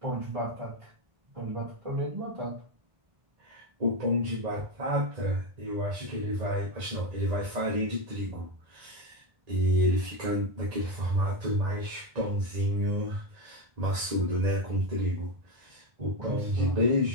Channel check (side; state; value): left; late; 1.9 ms